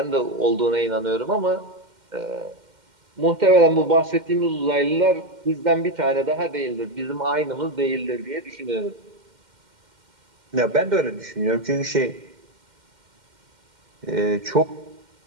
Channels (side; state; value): left; late; 2.1 ms